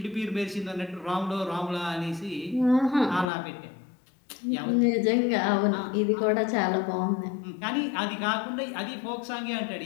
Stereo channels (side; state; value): right; drops out; at 3.2 s